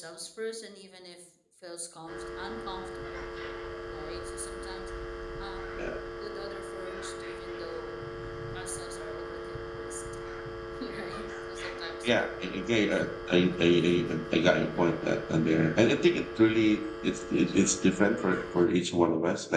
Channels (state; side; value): identical; both; correlation 1.00